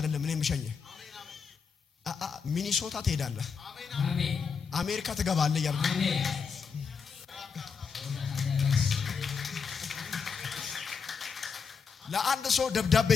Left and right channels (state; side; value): quieter; right; 5.9 dB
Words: እኔ ምሸኘ ሚኒሶታ ትሄዳለህ። አሜን። አሜሪካ ትገባለህ ያልኩ አሜን። ለአንድ ሰው ደብዳቤ